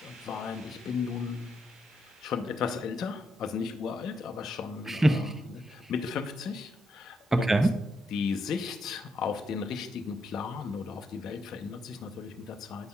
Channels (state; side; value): normal; both; correlation 0.80